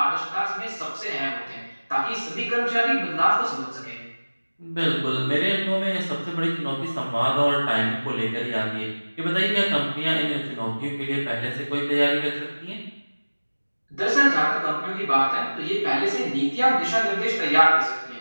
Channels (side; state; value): both; inverted; correlation -1.00